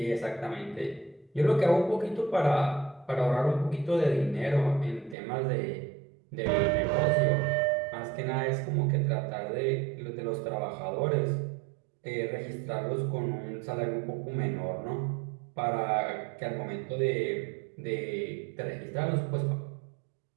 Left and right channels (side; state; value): left; drops out; at 5.2 s